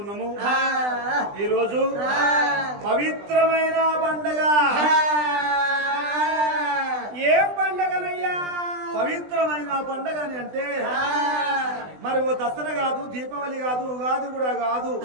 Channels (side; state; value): left; late; 20 ms